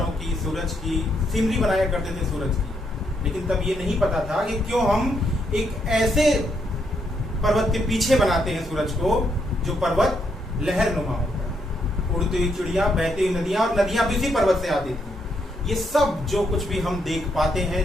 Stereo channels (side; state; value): both; normal; correlation 0.76